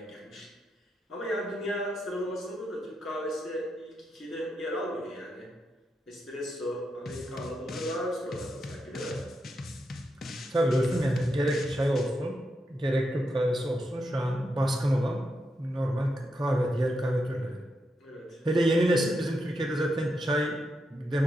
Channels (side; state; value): both; normal; correlation 0.84